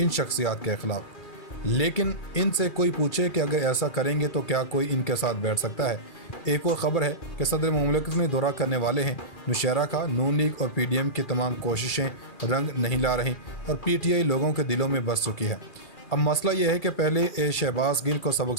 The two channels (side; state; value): right; late; 2.4 ms